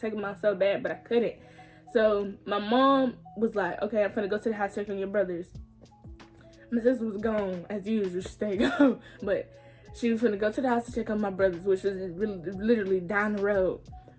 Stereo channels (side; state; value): both; identical; correlation 1.00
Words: them out so bad, but I couldn't. So my mom was like, okay, I'm finna go to the house, check on your brothers. My sister was gone as usual. She stayed gone, but she was gonna go to the house to check on my brothers, which was really, literally down the road.